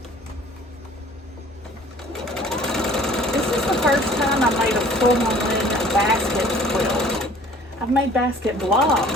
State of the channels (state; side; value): normal; both; correlation 0.52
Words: This is the first time I made a full-on basket quilt. I've made basket